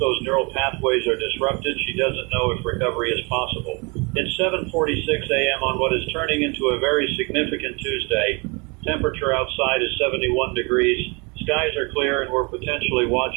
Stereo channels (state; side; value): quieter; left; 29.9 dB